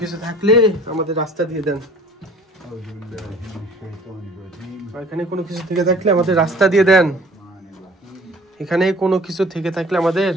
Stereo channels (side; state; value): both; normal; correlation 0.50